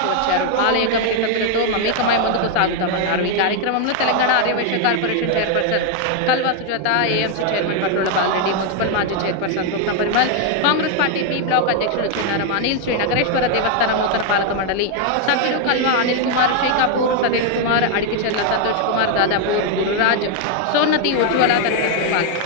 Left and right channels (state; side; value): different; both; correlation 0.00